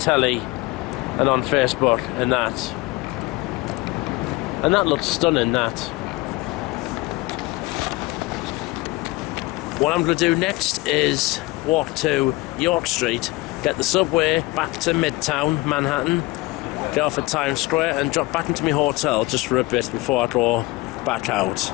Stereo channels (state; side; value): quieter; right; 21.8 dB